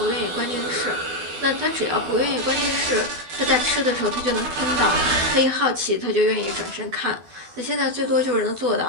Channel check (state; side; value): late; left; 12 ms